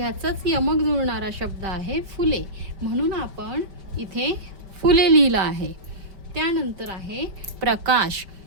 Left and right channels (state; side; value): late; left; 5.2 ms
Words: यमक जुळणारा शब्द आहे फुले, म्हणून आपण इथे फुले लिहिलं आहे. त्यानंतर आहे प्रकाश.